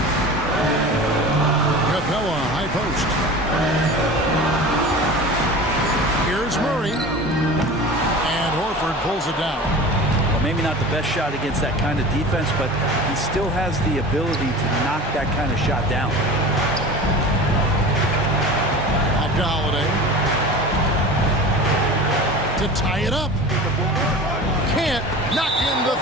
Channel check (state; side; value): normal; both; correlation 0.35